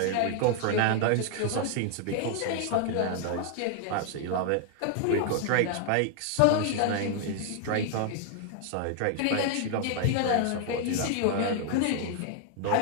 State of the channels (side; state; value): both; different; correlation 0.00